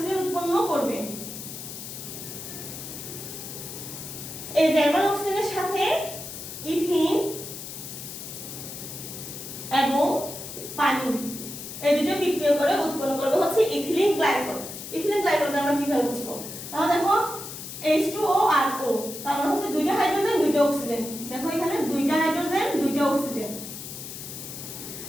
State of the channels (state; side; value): noise; left; hiss, 10 dB below the sound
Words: উৎপন্ন করবে। এই জার্মান অক্সিজেনের সাথে ইথিন এবং পানি এই দুটো বিক্রিয়া করে উৎপন্ন করবে হচ্ছে ইথিলিন গ্লাইকল। ইথিলিন গ্লাইকলটা আমরা কিভাবে বুঝবো? তাহলে দেখো H2O আর O, তার মানে হচ্ছে দুইটা হাইড্রোজেন দুইটা অক্সিজেন। দেখো এখানে দুইটা হাইড্রোজেন দুইটা অক্সিজেন।